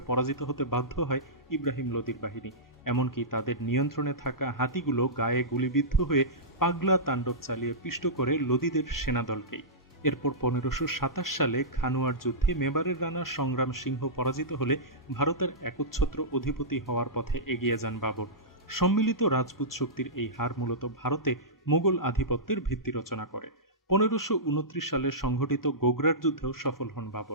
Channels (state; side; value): normal; both; correlation -0.16